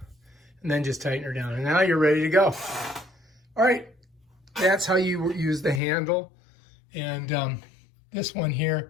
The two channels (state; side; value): drops out; right; at 5.8 s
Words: And then just tighten her down. And now you're ready to go. All right, that's how you use the handle. And this one here